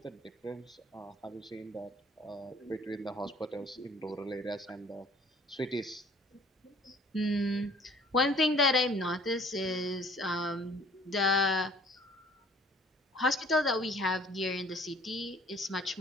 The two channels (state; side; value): normal; both; correlation 0.54